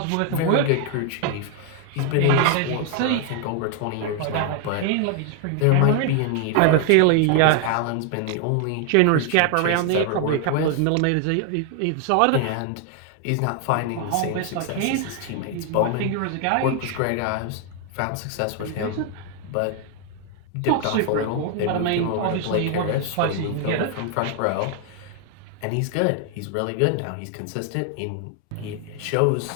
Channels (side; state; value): both; different; correlation 0.00